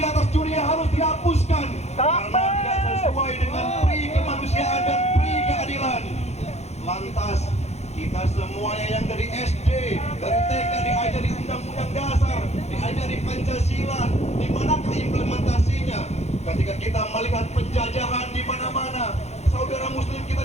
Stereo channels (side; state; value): right; late; 0.32 ms